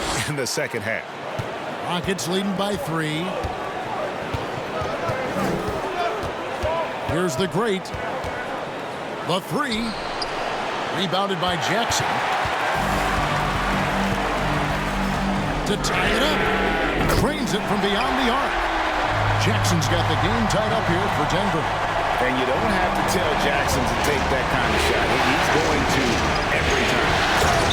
in the second half. Rockets leading by 3. Here's the Great. The 3. Rebounded by Jackson. To tie it up. Trains it from beyond the arc. Jackson's got the game tied up here for Denver. And you don't have to tell Jackson to take that kind of shot. He's going to every time.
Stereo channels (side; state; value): both; identical; correlation 1.00